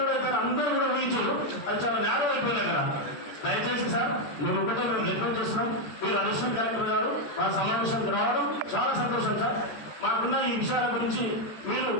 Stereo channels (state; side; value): late; right; 13 ms